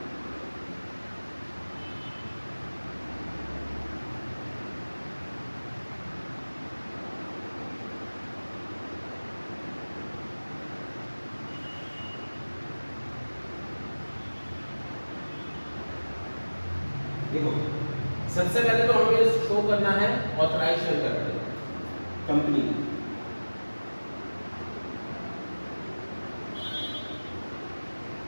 देखो सबसे पहले तो हमें शो करना है ऑथराइज्ड शेयर कैपिटल कंपनी की।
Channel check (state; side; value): inverted; both; correlation -1.00